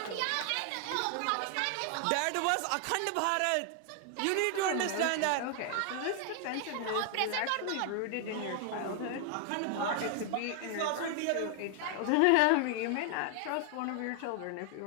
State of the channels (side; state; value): both; different; correlation 0.00